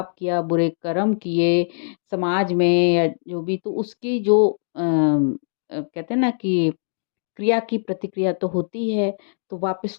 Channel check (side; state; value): right; silent; digital silence